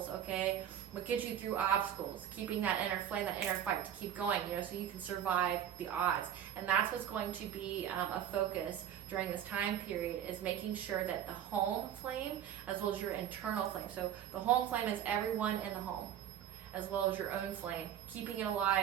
okay? What gets you through obstacles, keeping that inner flame, that inner fight to keep going, so you can survive the odds. And that's what's going to be a focus during this time period, is making sure that the home flame as well as your internal flame. So the home flame is everyone in the home, as well as your own flame, keeping it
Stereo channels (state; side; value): quieter; left; 10.1 dB